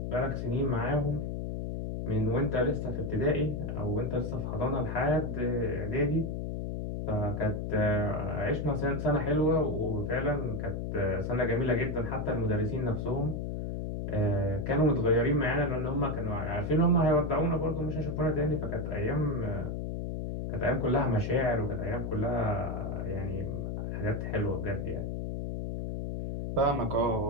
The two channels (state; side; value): noise; left; hum, 3 dB below the sound